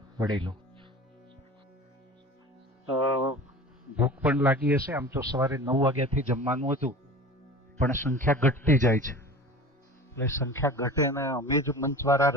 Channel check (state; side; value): normal; both; correlation 0.37